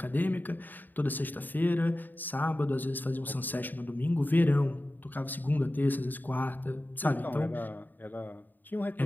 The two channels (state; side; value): late; right; 0.089 ms